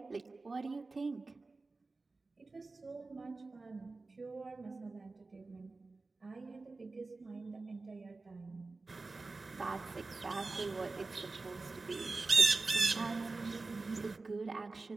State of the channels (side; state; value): left; quieter; 3.6 dB